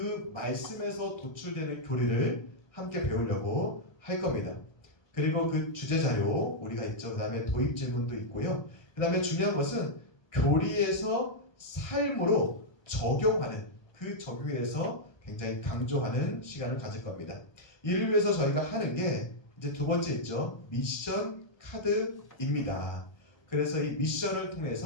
말씀에서 도출되는 교리를 함께 배우려고 할 겁니다. 그리고 그 주제 자료 우리가 있죠. 그 다음에 도입 질문도 있고요. 그 다음에 중요한 것은 교리에서 삶으로 적용하는, 그 적용에 대해서 굉장히 강조하는 시간을 가질 겁니다. 이를 위해서 저희가 하는 게 이제 두 번째 있죠. 미션 카드입니다. 그래서 이 미션을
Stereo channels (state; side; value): late; right; 1.3 ms